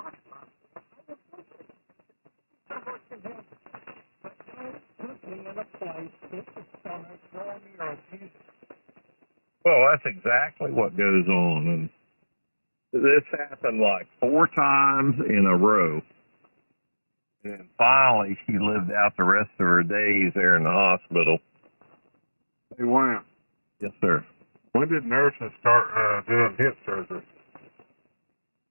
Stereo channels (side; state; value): both; inverted; correlation -1.00